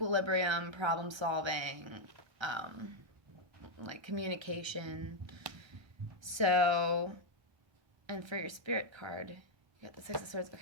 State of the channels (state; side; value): late; left; 1.2 ms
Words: problem solving, like, communication. So, and for your Spirit card, you got the 6 of Swords.